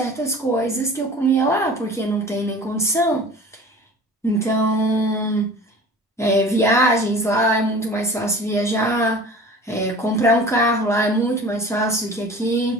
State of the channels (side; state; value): both; normal; correlation 0.41